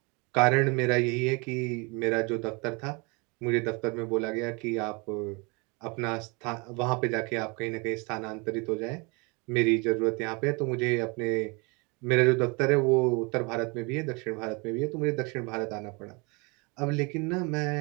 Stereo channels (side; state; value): left; quieter; 29.4 dB